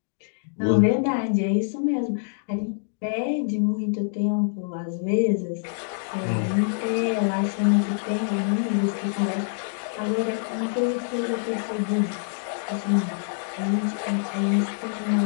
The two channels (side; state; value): right; silent; digital silence